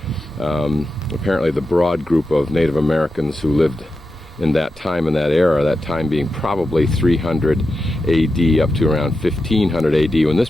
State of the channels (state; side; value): normal; both; correlation 0.90